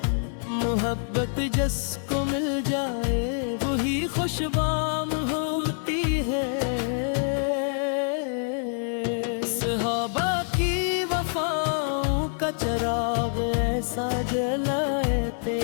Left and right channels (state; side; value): silent; right; 61 dB below the other